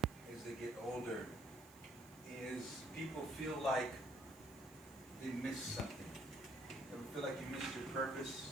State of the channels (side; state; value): right; noise; hiss, 21 dB below the sound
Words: as they get older is people feel like they missed something. Ever feel like you missed your purpose?